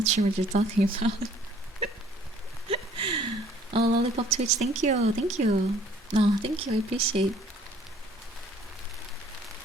sure what you're talking about. Oh, Lollipop Twitch, thank you. No, thank you. I appreciate.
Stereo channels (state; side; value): normal; both; correlation 0.57